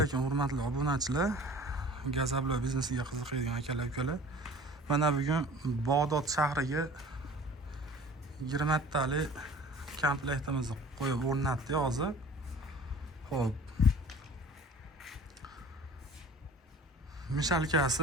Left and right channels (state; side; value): normal; both; correlation 0.45